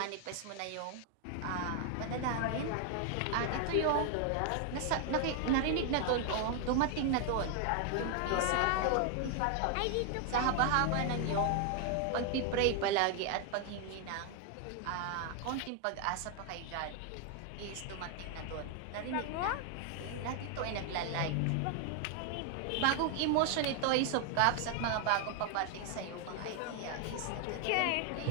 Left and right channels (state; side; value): different; both; correlation 0.00